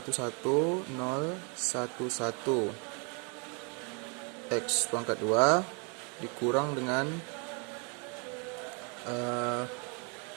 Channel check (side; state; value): left; quieter; 35.5 dB